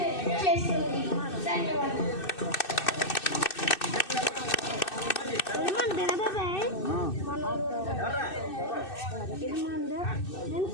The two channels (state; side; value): late; right; 2.6 ms